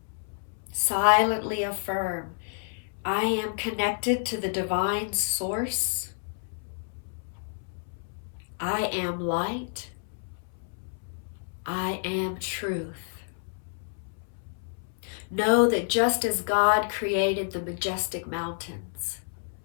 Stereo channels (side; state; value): right; silent; 58 dB below the other